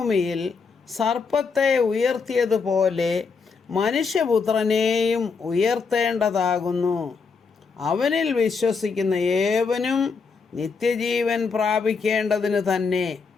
സർപ്പത്തെ ഉയർത്തിയതുപോലെ മനുഷ്യപുത്രനെയും ഉയർത്തേണ്ടതാകുന്നു. അവനിൽ വിശ്വസിക്കുന്ന ഏവനും നിത്യജീവൻ പ്രാപിക്കേണ്ടതിന് തന്നെ.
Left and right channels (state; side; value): quieter; right; 5.1 dB